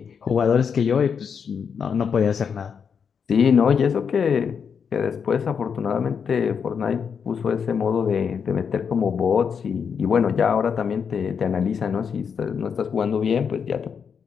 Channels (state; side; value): quieter; right; 6.7 dB